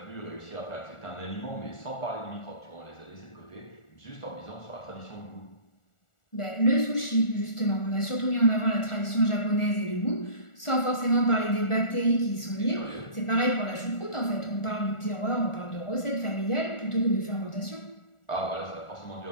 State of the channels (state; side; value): late; right; 1.4 ms